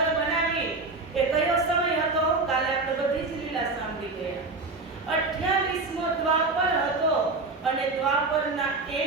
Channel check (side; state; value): left; quieter; 3.6 dB